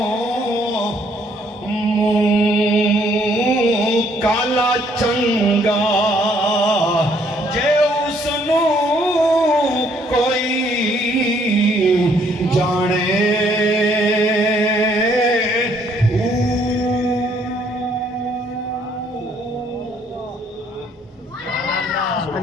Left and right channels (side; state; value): both; normal; correlation 0.66